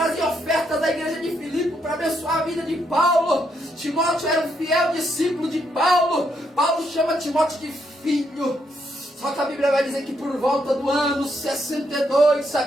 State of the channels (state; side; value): normal; both; correlation 0.76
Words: ofertas da igreja de Filipe para abençoar a vida de Paulo. Timóteo era um fiel discípulo de Paulo. Paulo chama Timóteo de filho. Só que a Bíblia vai dizer que por volta do ano 62,